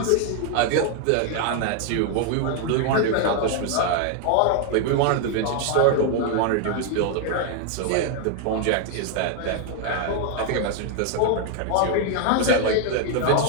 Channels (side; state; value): both; different; correlation 0.00